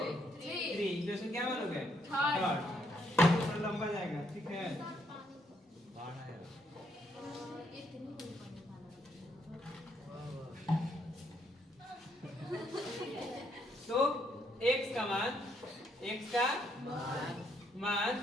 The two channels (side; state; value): both; normal; correlation 0.73